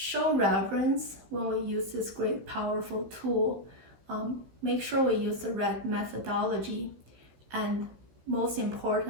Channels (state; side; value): late; left; 15 ms